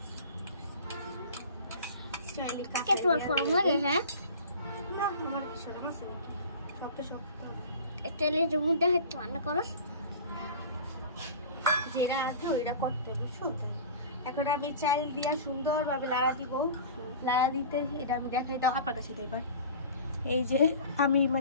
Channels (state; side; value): inverted; both; correlation -0.39